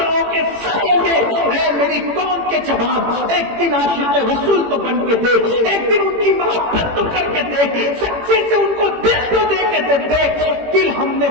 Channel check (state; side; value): late; left; 18 ms